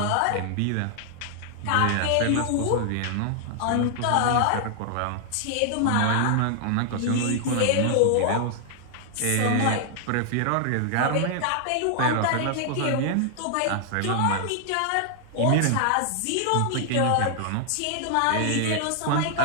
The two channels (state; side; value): different; both; correlation 0.00